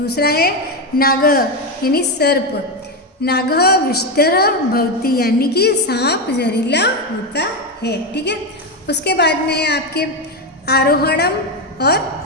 है नागः यानी सर्प, नागः विषधरः भवति, यानी कि सांप जहरीला होता है। ठीक है, उसके बाद में है आपके आरोहणम और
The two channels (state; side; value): normal; both; correlation 0.11